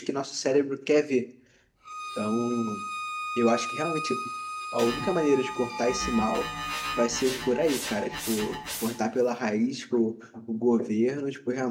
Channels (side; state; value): both; identical; correlation 1.00